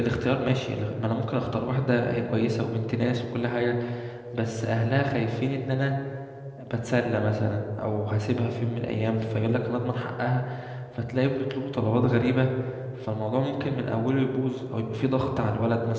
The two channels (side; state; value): both; identical; correlation 1.00